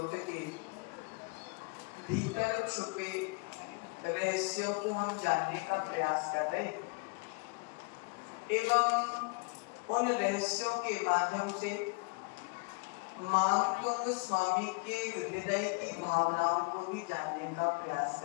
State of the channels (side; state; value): right; quieter; 30.4 dB